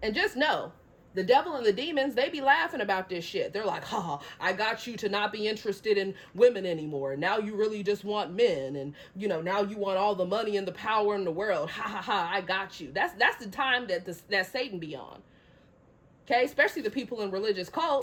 And just know, the devil and the demons, they be laughing about this shit. They're like, I got you to not be interested in women anymore. Now you really just want men. And, now you want all the money and the power in the world. I got you. That's the time that Satan be on. Okay? Especially the people in religious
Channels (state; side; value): identical; both; correlation 1.00